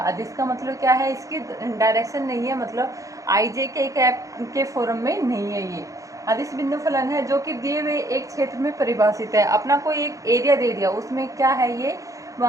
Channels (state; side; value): late; left; 0.16 ms